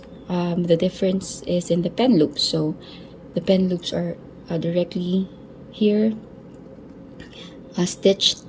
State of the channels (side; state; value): both; identical; correlation 1.00